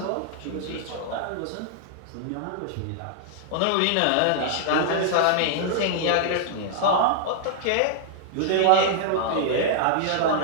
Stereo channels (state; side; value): different; both; correlation -0.01